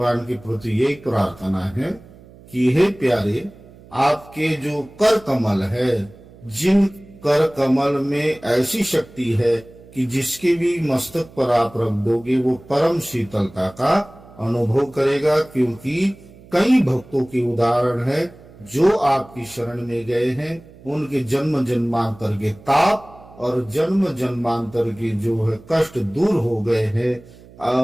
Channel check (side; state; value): right; noise; hum, 22 dB below the sound